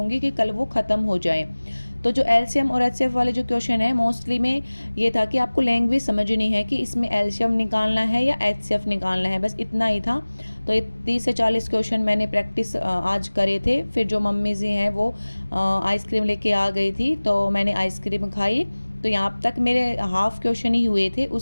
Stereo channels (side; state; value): both; inverted; correlation -1.00